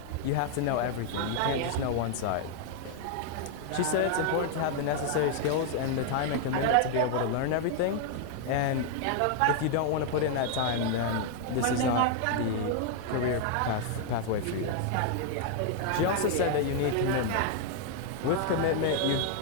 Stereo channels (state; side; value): different; both; correlation 0.00